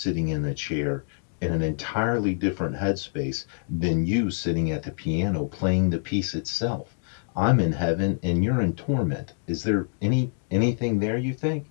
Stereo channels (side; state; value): right; silent; 61 dB below the other